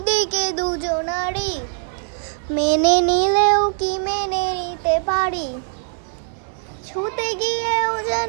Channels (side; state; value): left; silent; 65 dB below the other